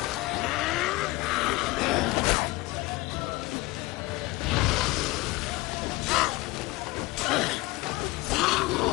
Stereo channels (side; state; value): right; quieter; 21.3 dB